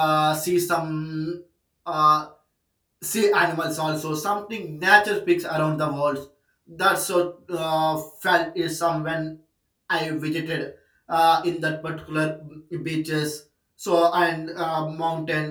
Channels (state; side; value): identical; both; correlation 1.00